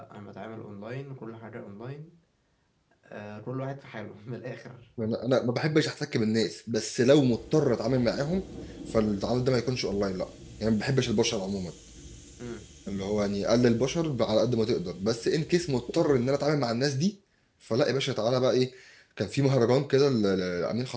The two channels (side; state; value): both; identical; correlation 1.00